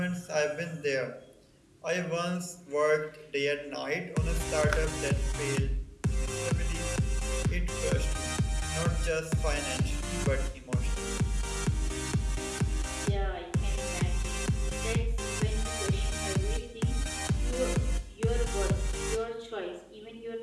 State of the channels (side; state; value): both; identical; correlation 1.00